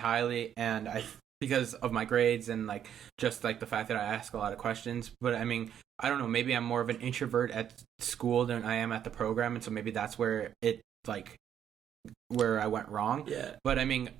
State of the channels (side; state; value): left; quieter; 9.5 dB